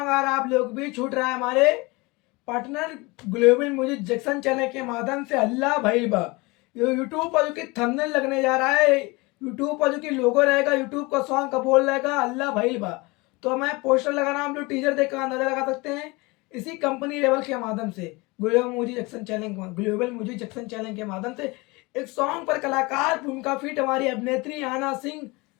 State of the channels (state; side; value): quieter; right; 24.7 dB